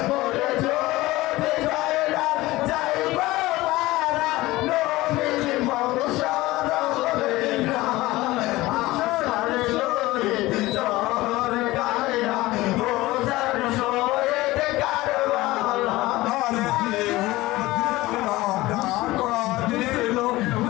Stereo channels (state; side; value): quieter; right; 18.8 dB